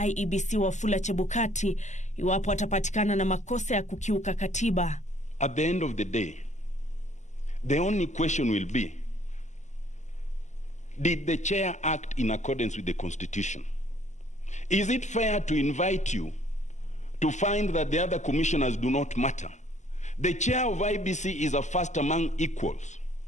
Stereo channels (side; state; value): right; late; 0.34 ms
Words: IEBC Wafula Chebukati, iwapo atapatikana na makosa ya kukiuka katiba. At the end of the day, the only question will be, did the chair act in accordance with the Constitution? Is it fair to invite you to find that the other commissioners do not matter? The chair of IBC is a first among equals,